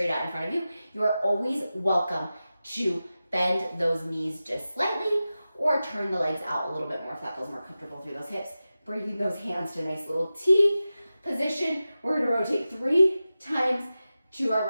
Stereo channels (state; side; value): inverted; both; correlation -0.94